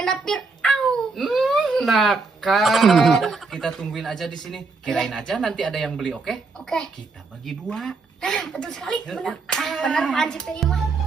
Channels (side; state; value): left; quieter; 4.2 dB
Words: Fir'aun. Nakal. Kita tungguin aja di sini. Kirain aja nanti ada yang beli, oke? Oke. Kita bagi dua. Nah, betul sekali, benar. Benar Pak Hansip tadi mah.